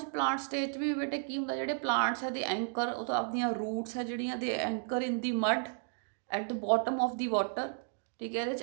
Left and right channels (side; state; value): left; silent; 56 dB below the other